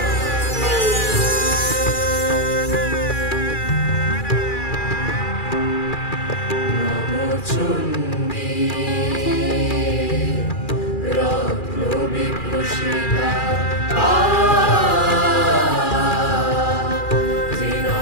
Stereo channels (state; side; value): late; right; 2.4 ms